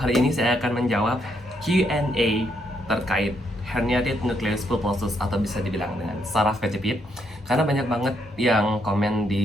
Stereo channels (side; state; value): both; normal; correlation 0.76